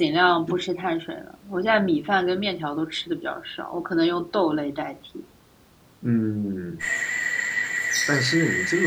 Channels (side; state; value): both; identical; correlation 1.00